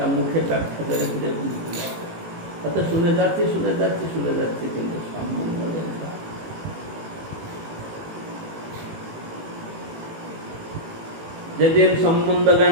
মুখে ব্যাখ্যা করে দিলে বুঝতে পারবে। তাতে শুনে যাচ্ছি শুনে যাচ্ছি শুনে যাচ্ছি, কিন্তু সম্বন্ধ জ্ঞানটা যেদিন সম্বন্ধ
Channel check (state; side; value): late; left; 18 ms